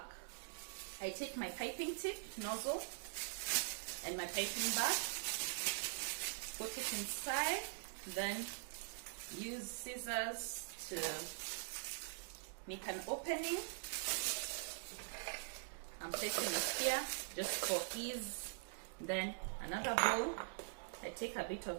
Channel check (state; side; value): silent; left; digital silence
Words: I take my piping tip nozzle and my piping bag, put it inside, then use scissors to make an opening. I'm placing it here just for ease. Then another bowl, I take a bit